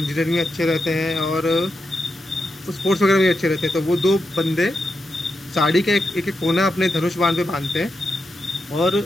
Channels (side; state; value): both; normal; correlation 0.86